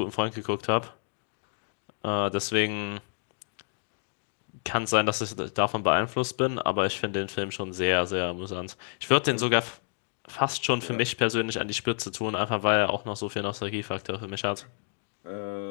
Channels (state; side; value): silent; right; 58 dB below the other